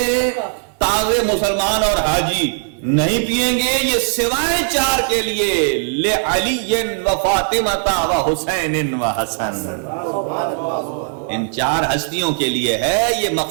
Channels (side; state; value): left; silent; digital silence